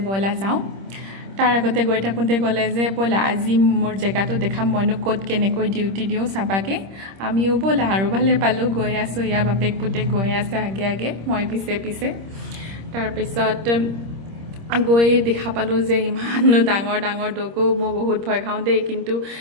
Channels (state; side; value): late; left; 26 ms